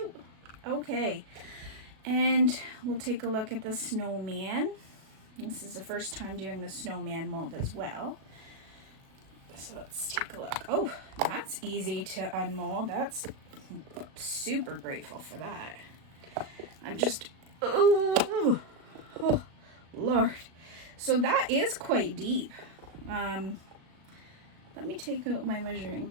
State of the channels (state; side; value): late; left; 37 ms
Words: Okay, and we'll take a look at the snowman. This is the first time doing the snowman mold as well. So let's take a look. Oh, that's easy to unmold. That's super grateful for that. I'm just, oh Lord. So that is quite deep. Let me take out my measuring